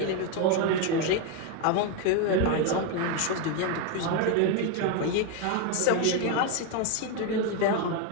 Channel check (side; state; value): both; different; correlation 0.01